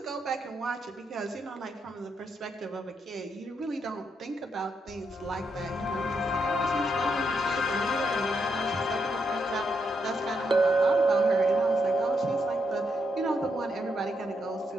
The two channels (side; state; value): both; normal; correlation 0.80